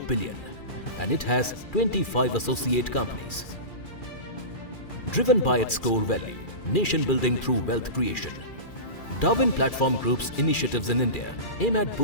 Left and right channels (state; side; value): late; right; 2.4 ms